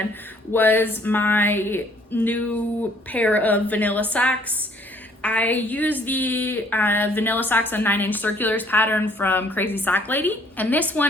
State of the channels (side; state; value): both; normal; correlation 0.61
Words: was my new pair of vanilla socks. I used the vanilla socks on 9-inch circulars pattern from Crazy Sock Lady. And this